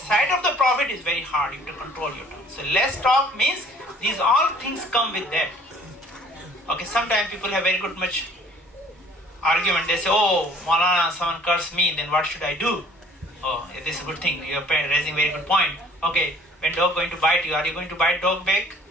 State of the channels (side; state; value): both; normal; correlation 0.54